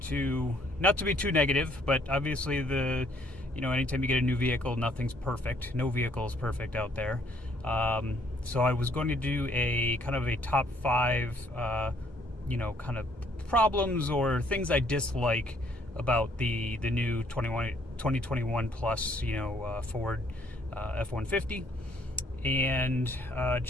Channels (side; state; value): both; normal; correlation 0.65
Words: to not to be too negative, but obviously anytime you get a new vehicle, nothing's perfect. No vehicle is perfect out there. So I was going to do a kind of a top five, kind of problems or things I dislike about the new 2021 plus, Ford F-150. And